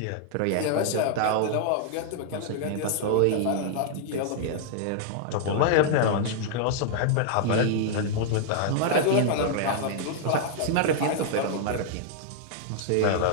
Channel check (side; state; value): both; different; correlation -0.01